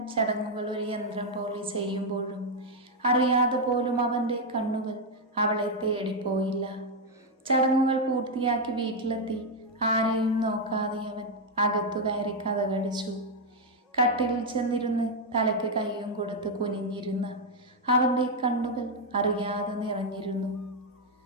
ചടങ്ങുകൾ ഒരു യന്ത്രം പോലെ ചെയ്യുമ്പോഴും അറിയാതെ പോലും അവൻ്റെ കണ്ണുകൾ അവളെ തേടിപ്പോയില്ല. ചടങ്ങുകൾ പൂർത്തിയാക്കി വീട്ടിലെത്തി ആരെയും നോക്കാതെ അവൻ അകത്തു കയറി കതകടിച്ചു. കട്ടിലിൽ ചെന്നിരുന്ന് തലയ്ക്ക് കൈയും കൊടുത്ത് കുനിഞ്ഞിരുന്ന അവൻ്റെ കണ്ണുകൾ അറിയാതെ നിറഞ്ഞിരുന്നു.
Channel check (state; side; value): normal; both; correlation 0.01